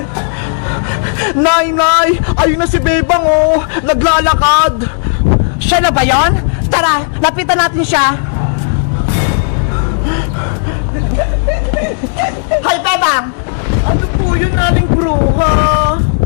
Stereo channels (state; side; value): silent; right; digital silence